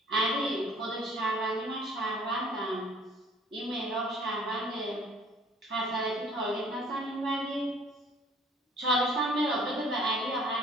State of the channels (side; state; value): both; normal; correlation 0.55